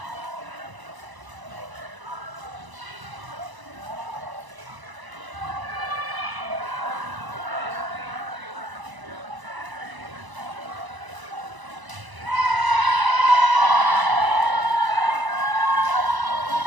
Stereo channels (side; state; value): left; late; 1.0 ms